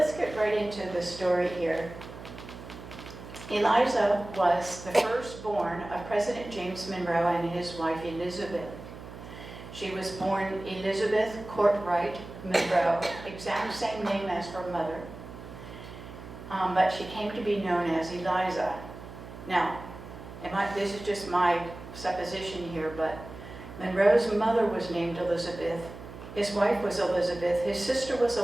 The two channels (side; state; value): right; noise; hum, 13 dB below the sound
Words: get right into the story here. Eliza was the firstborn of President James Monroe and his wife Elizabeth. She was born Elizabeth Courtwright Monroe, exact same name as her mother, but she came to be known as Eliza. Now, this is just my supposition here, but Monroe's mother was named Elizabeth. His wife was Elizabeth, his sister was